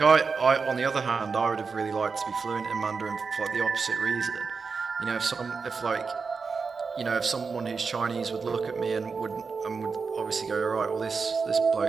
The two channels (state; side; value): quieter; left; 5.0 dB